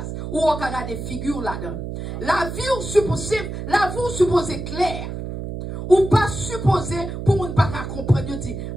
Ou on a des figures là-dedans. La vie ou supposée claire. Ou pas supposé pour ne pas comprendre. Je dis,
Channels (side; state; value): right; noise; hum, 7 dB below the sound